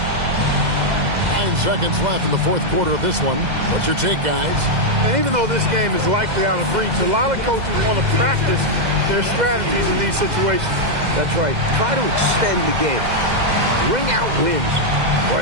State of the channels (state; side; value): late; left; 2.0 ms